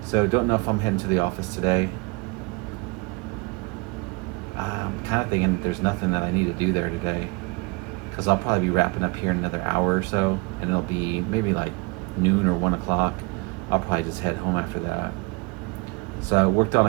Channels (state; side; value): quieter; left; 28.2 dB